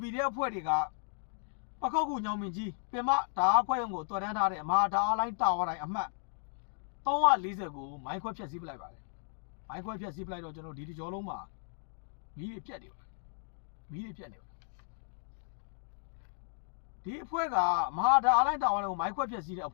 PDF အဖွဲ့တွေကပခုတ်ကူညောင်မင်းကြီးပင်မဓာတ်ခွဲရုံကိုတော်တန်းထားတဲ့မဟာဓာတ်လိုင်းတာဝါတိုင်းအမှတ်340ကိုမိုင်းခွဲဖျက်ဆီးပလိုက်ပါတယ်မိုင်းခွဲဖျက်ဆီးပလိုက်တော့ကျွန်တော်ဒီတကြောလုံးမှာမီးတွေပြတ်နေပါတယ်ဒီအဖွဲ့ကမဟာဓာတ်လိုင်းတာဝါတိုင်းကိုမိုင်းခွဲဖျက်ဆီးတဲ့အ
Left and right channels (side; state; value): right; silent; 55 dB below the other